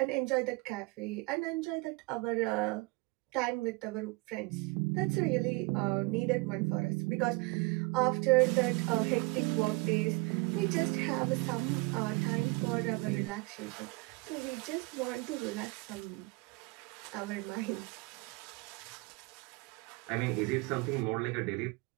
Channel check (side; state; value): left; quieter; 25.6 dB